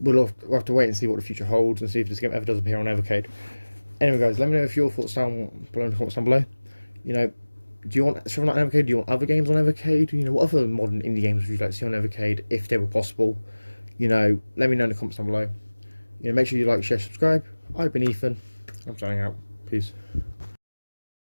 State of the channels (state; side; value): inverted; both; correlation -1.00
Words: have to wait and see what the future holds and see if this game ever does appear on Evercade. Anyway, guys, let me know if your thoughts down below in the comments down below. Do you want Shovel Knight on Evercade? Do you want other games on Evercade? What other modern indie games would you like to see on Evercade if they were possible? Let me know in the comments down below. Make sure you like, share, subscribe. I've been Ethan. I'm signing out. Peace.